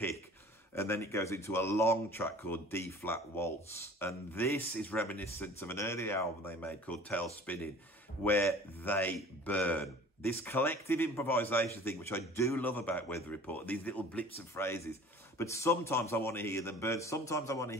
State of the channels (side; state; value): both; normal; correlation 0.45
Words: And then it goes into a long track called D-Flat Waltz. And this is reminiscent of an earlier album they made called Tail Spinning, where they burn. This collective improvisation thing, which I do love about Weather Report, these little blips of phrases. But sometimes I want to hear them burn. Sometimes I want to